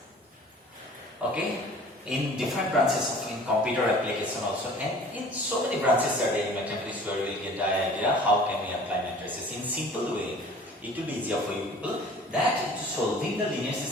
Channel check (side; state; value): both; normal; correlation 0.47